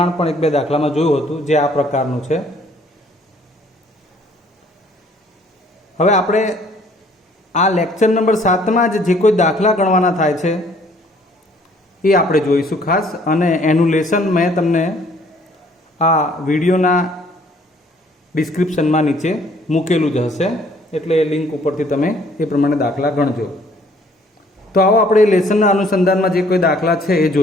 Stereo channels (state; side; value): normal; both; correlation 0.60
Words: પણ એક બે દાખલામાં જોયું હતું જે આ પ્રકારનું છે। હવે આપણે આ લેક્ચર નંબર 7 માં જે કોઈ દાખલા ગણવાના થાય છે એ આપણે જોઈશું ખાસ, અને એનું લેસન મેં તમને આ વિડીયોના ડિસ્ક્રિપ્શનમાં નીચે મૂકેલું જ હશે, એટલે એ લિંક ઉપરથી તમે એ પ્રમાણે દાખલા ગણજો। તો આવો આપણે લેસનના અનુસંધાનમાં જે કોઈ દાખલા છે એ